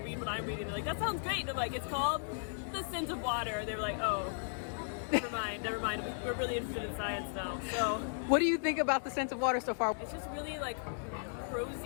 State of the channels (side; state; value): right; silent; digital silence